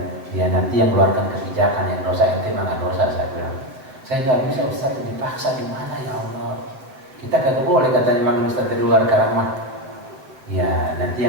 ya nanti yang keluarkan kebijakan, yang dosa ente mana dosa. Saya bilang saya nggak bisa Ustaz, dipaksa gimana ya Allah. Kita kagak boleh katanya manggil Ustaz dari luar sekarang mah. Ya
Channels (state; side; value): late; left; 7.5 ms